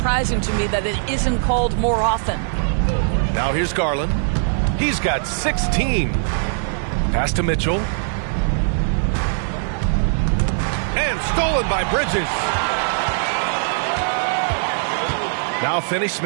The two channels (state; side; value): silent; left; digital silence